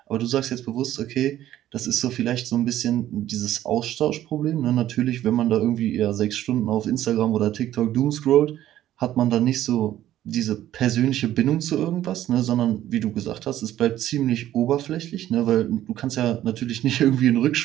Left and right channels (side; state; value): left; quieter; 12.9 dB